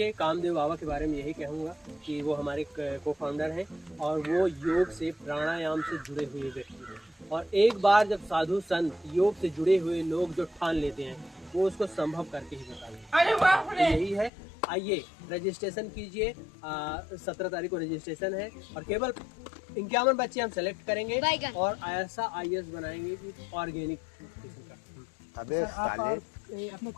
कामदेव बाबा के बारे में यही कहूँगा कि वो हमारे को फाउंडर हैं और वो योग से, प्राणायाम से जुड़े हुए व्यक्ति हैं। और एक बार जब साधु संत योग से जुड़े हुए लोग जो ठान लेते हैं, वो उसको संभव करके ही बताते हैं। यही है। आइए, रजिस्ट्रेशन कीजिए। 17 तारीख को रजिस्ट्रेशन है और केवल 51 बच्चे हम सेलेक्ट करेंगे और ऐसा IAS बनाएंगे कि ऑर्गेनिक किस्म का। अबे सर, आप साले। अपने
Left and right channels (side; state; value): right; drops out; at 14.3 s